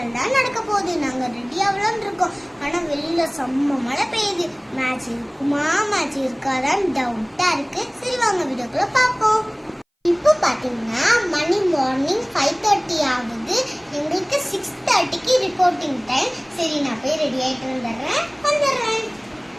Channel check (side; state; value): both; identical; correlation 1.00